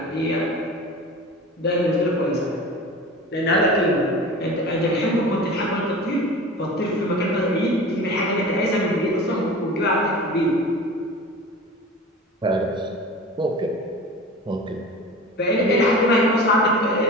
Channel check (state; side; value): normal; both; correlation 0.36